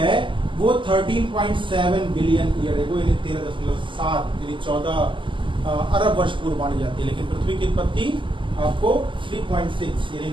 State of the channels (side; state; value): left; late; 0.24 ms